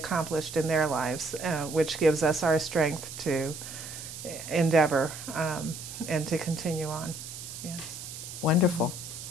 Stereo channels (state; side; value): noise; right; hiss, 10 dB below the sound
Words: in their lives, which gives us our strength to endeavor and to continue on. Yes. Wonderful.